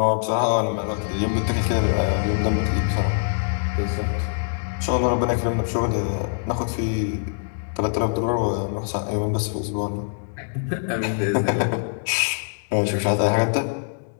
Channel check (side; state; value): right; silent; 63 dB below the other